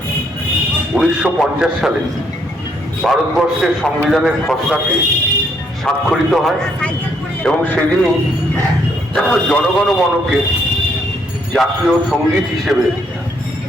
১৯৫০ সালে ভারতবর্ষের সংবিধানের খসড়াটি স্বাক্ষরিত হয় এবং সেদিনই জনগণ মনকে জাতীয় সঙ্গীত হিসেবে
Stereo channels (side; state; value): both; normal; correlation 0.71